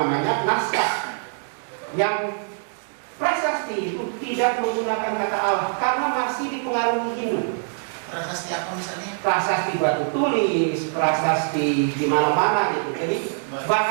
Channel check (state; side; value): silent; left; digital silence